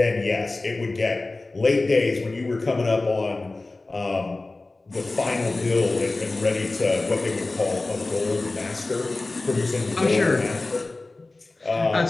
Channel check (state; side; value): quieter; right; 3.2 dB